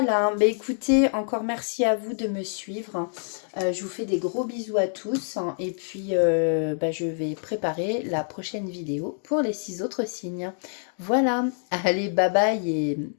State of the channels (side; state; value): right; silent; digital silence